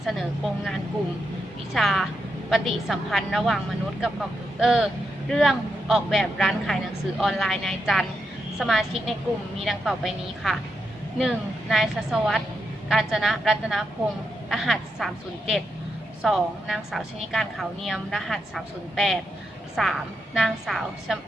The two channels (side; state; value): both; normal; correlation 0.84